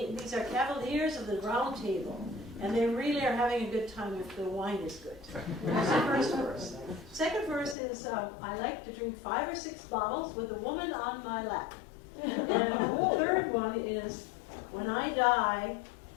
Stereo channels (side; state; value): right; drops out; at 7.8 s